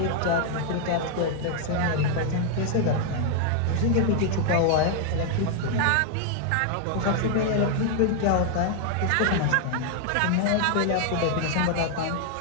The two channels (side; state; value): both; different; correlation 0.00